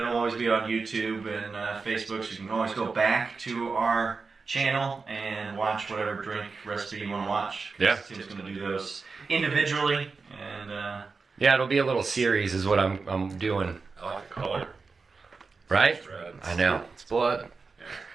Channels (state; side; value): quieter; left; 4.5 dB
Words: always be on YouTube and Facebook, so you can always go back to our channel and watch whatever drink recipe you want to watch. Yeah. Tim's going to do those individually, and Yeah, it'll be a little series is what I'm doing. I like the color. Right? It's red. I know. It's blood.